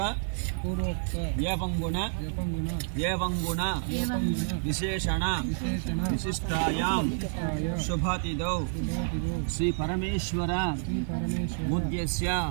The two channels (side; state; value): left; silent; 58 dB below the other